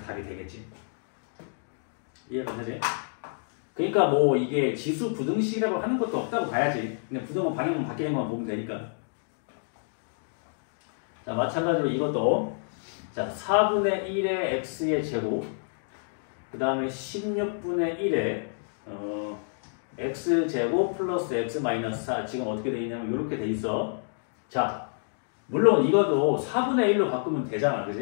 되겠지. 이해가 되지? 그러니까 뭐 이게 지수 부등식이라고 하는 것도 없다고 봐야지. 그냥 부등은 방향만 바뀌는 것만 보면 되니까. 자 마찬가지로 이것도 자 4분의 1의 x의 제곱 그 다음에 16분의 1의 x제곱 플러스 x 마이너스 4 지금 어떻게 돼 있냐면 이렇게 돼 있어. 자 물론 이것도 4분의 1로 바꾸면 되잖아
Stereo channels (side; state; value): right; silent; digital silence